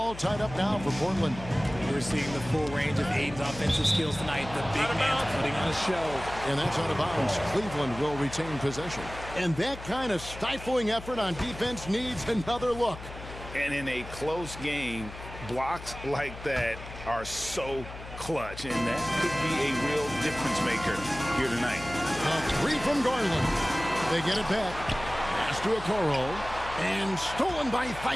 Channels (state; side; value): noise; left; hum, 13 dB below the sound